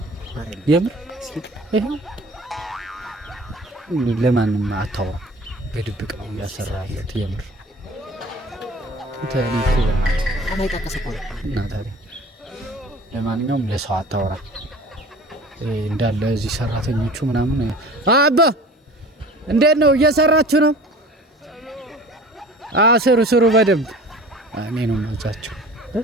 የምር ይሄ ለማንም አታው በድብቅ ነው ያሰራለት የምር ታሪክ አማይጣቀሰው እና ታዲያ ለማንኛውም ለሰው አታወራ እንዳለ እዚህ ሰራተኞቹ ምናምን አባ እንዴት ነው እየሰራችሁ ነው? ስሩ በደንብ እኔ ነው ማዛቸው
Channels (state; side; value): normal; both; correlation 0.43